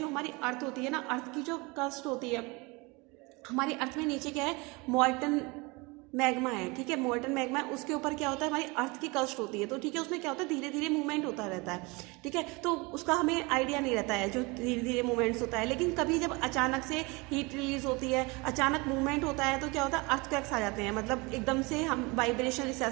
हमारी अर्थ होती है ना, अर्थ की जो क्रस्ट होती है, हमारी अर्थ में नीचे क्या है? मॉल्टन मैग्मा है। ठीक है, मोल्टन मैग्मा है, उसके ऊपर क्या होता है? हमारी अर्थ की क्रस्ट होती है। तो ठीक है, उसमें क्या होता है? धीरे धीरे मूवमेंट होता रहता है। ठीक है, तो उसका हमें आइडिया नहीं रहता है जो धीरे धीरे मूवमेंट्स होता है। लेकिन कभी जब अचानक से हीट रिलीज होती है, अचानक मूवमेंट होता है, तो क्या होता है? अर्थक्वेक्स आ जाते हैं। मतलब एकदम से हम वाइब्रेशन,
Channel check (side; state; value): left; quieter; 26.3 dB